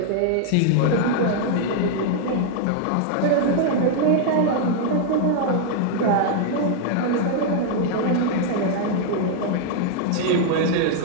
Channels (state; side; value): different; both; correlation 0.00